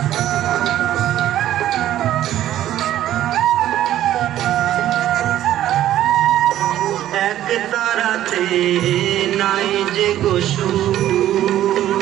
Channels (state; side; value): quieter; left; 12.7 dB